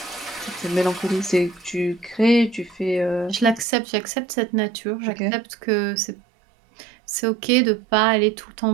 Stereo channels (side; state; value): left; drops out; at 3.7 s